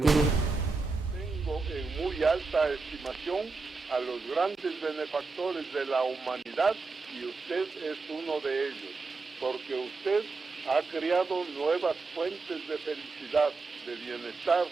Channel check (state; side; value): quieter; left; 4.1 dB